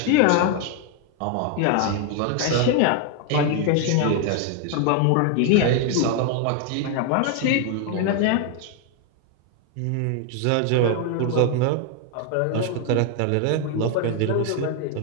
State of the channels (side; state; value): both; different; correlation 0.00